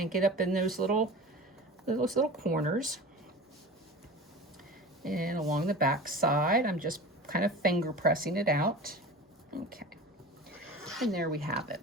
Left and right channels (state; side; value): normal; both; correlation 0.35